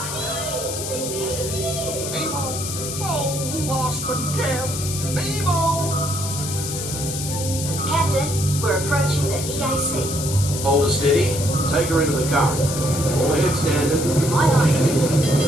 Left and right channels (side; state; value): left; noise; hiss, 6 dB below the sound